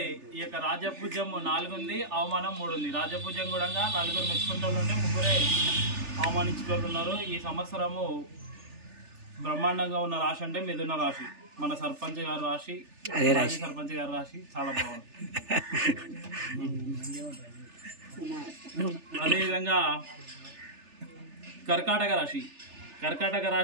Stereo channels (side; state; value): left; late; 3.4 ms